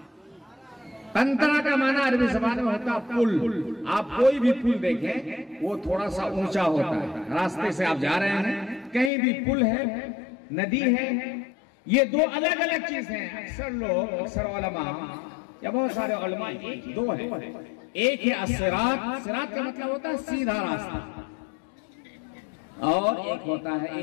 कंतरा का माना अरबी जबान में होता पुल। आप कोई भी पुल देखें वो थोड़ा सा ऊंचा होता है। रास्ते से आप जा रहे हैं, कहीं भी पुल है, नदी है, ये दो अलग अलग चीज हैं। अक्सर लोग, अक्सर उलमा या बहुत सारे उलमा, दो है। एक है सिरात, सिरात का मतलब होता है सीधा रास्ता, और एक होता है,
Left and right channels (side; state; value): right; drops out; at 9.1 s